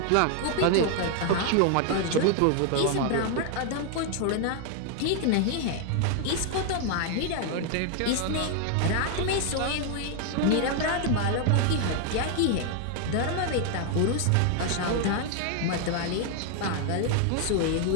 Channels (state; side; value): different; both; correlation 0.00